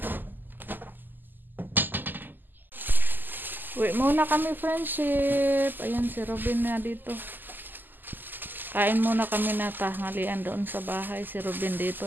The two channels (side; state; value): left; late; 0.089 ms